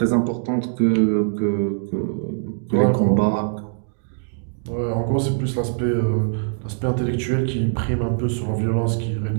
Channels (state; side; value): silent; left; digital silence